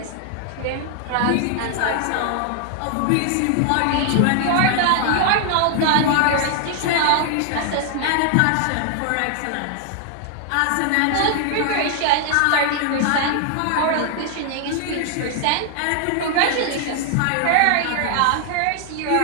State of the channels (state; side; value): different; both; correlation 0.00